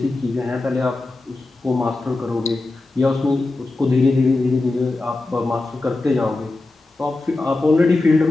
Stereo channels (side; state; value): right; quieter; 3.1 dB